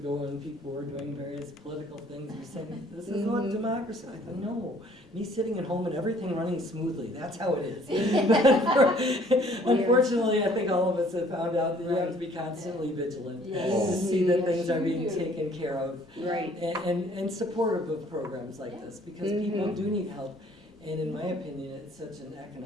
when people were doing various political things, we said, this is what democracy, I thought, no, me sitting at home and everything running smoothly, that's how it is. But unfortunately, I think all of us have found out that you have to be constantly vigilant to Yes. see that Yes, things are you being do. taken care of. Right. And supportive of programs like this, because people Mhm. do need help. And in my opinion, it's such an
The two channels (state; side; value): normal; both; correlation 0.58